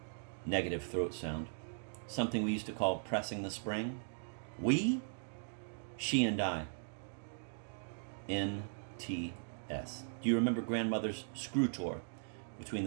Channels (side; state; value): left; silent; digital silence